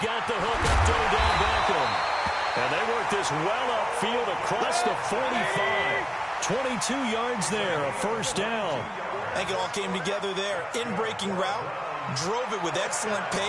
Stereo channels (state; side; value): identical; both; correlation 1.00